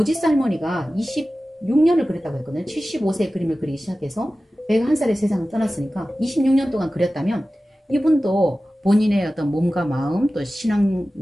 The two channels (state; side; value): normal; both; correlation 0.96